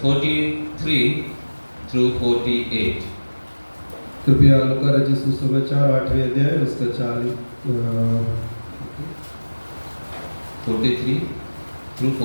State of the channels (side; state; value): both; inverted; correlation -1.00